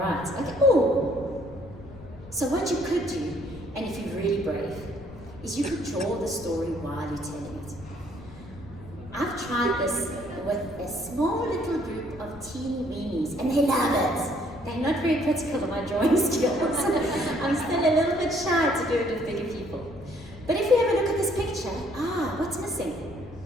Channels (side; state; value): left; noise; rumble, 17 dB below the sound